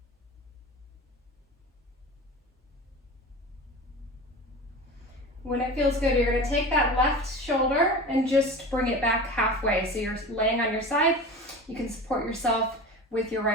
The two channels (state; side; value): normal; both; correlation 0.33